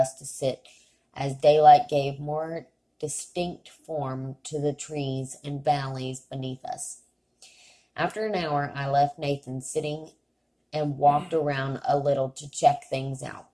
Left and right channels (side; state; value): both; identical; correlation 1.00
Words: to sit, as daylight gave more distinct form to the trees and valleys beneath us. After an hour, I left Nathan sitting and walked around a little to check things out.